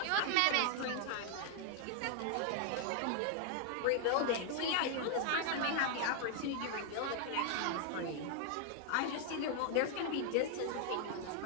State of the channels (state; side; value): different; both; correlation 0.00